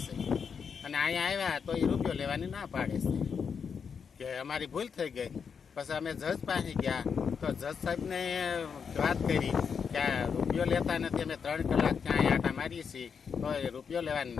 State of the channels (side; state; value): right; quieter; 6.4 dB